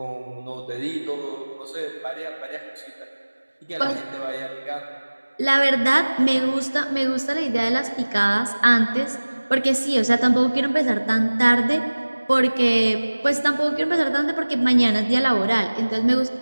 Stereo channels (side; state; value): both; inverted; correlation -1.00